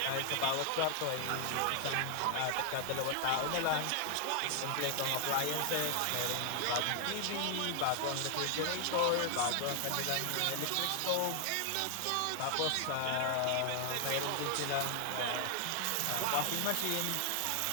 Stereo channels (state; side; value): different; both; correlation 0.00